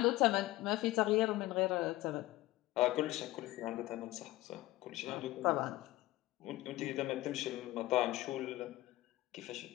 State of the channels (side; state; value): right; quieter; 17.6 dB